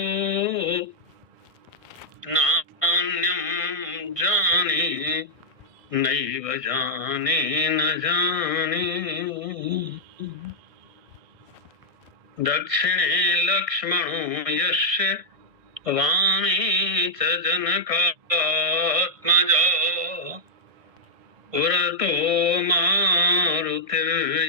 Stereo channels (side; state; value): left; late; 1.5 ms